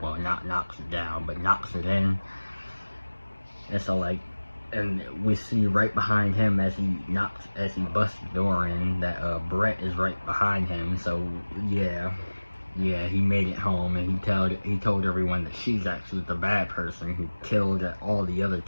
Well, not knocks it down, but knocks it in. And so like, and we see right behind him as he busts the door in, that Brett is right behind him. So yeah, he made it home, and he told everyone that she's actually the bad person who killed all the other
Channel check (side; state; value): both; inverted; correlation -1.00